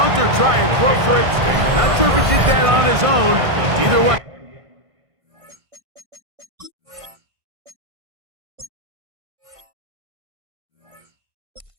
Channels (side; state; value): left; late; 1.5 ms